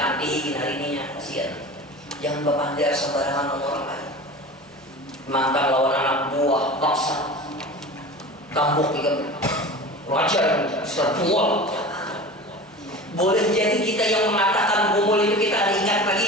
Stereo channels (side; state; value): both; normal; correlation 0.34